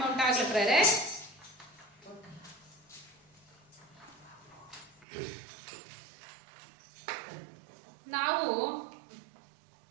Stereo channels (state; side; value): drops out; left; at 5.1 s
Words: ಉಂಟಾಗಲಿ ಪ್ರೇರೆ. ನಾವು